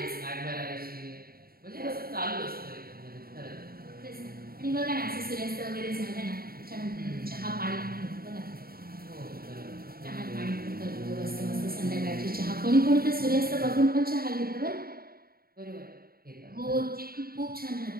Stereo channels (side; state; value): left; late; 0.43 ms